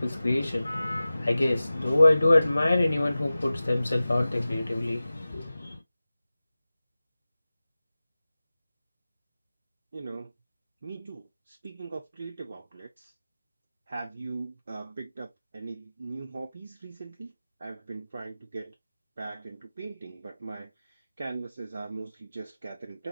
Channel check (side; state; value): both; inverted; correlation -0.96